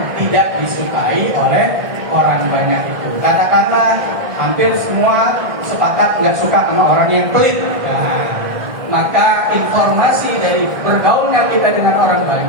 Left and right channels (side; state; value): left; late; 1.7 ms